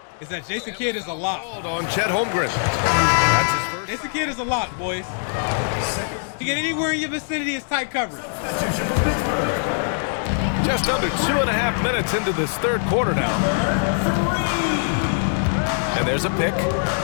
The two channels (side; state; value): right; silent; digital silence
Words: is that Jason Kidd is a lock. Called on Chet Holmgren. That's his first. Jason Kidd is a lock, boys. To get anywhere in your vicinity is tight coverage. Just under 2.5 minutes into this third quarter now. And there's a pick.